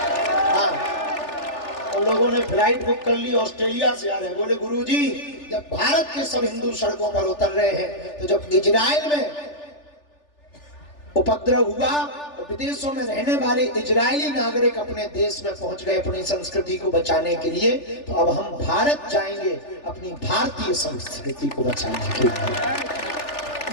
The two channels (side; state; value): right; late; 3.4 ms